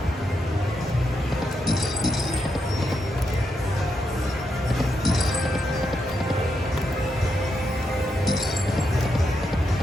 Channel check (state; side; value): normal; both; correlation 0.82